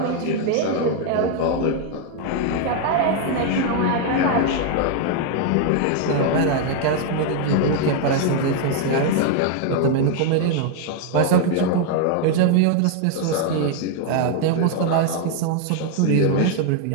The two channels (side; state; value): both; different; correlation 0.01